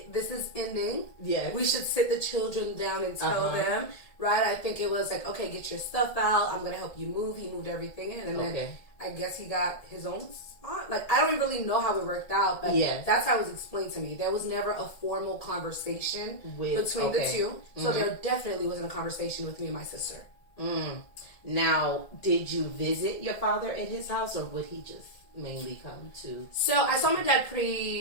this is ending. We should sit the children down and tell them. Right? I think it was like, okay, get your stuff out. I'm going to help you move. He moved everything in. And then I guess he got his own spot. like, I don't really know how it worked out, but Yes. that's how it was explained to me. There was never a formal conversation between the two. So there definitely wasn't a conversation with me and my sister. Now, did you visit your father at his house, or would he just mainly come to? So I saw my dad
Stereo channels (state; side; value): late; right; 1.7 ms